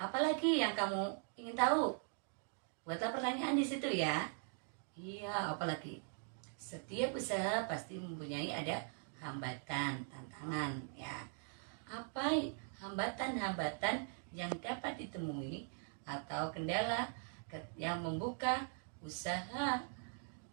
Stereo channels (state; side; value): silent; left; 50 dB below the other